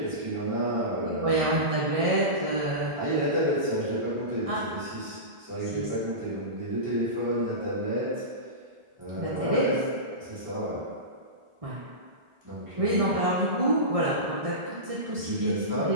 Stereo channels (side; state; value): left; late; 1.4 ms